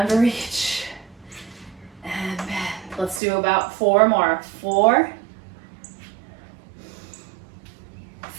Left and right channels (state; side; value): drops out; left; at 3.2 s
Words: reach. And bend. Let's do about four more. 4,